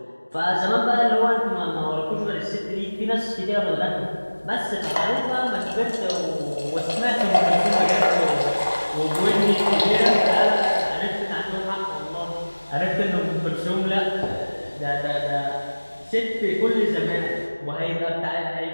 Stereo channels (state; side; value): inverted; both; correlation -1.00